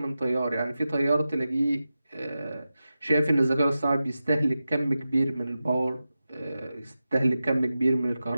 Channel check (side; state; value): both; inverted; correlation -0.93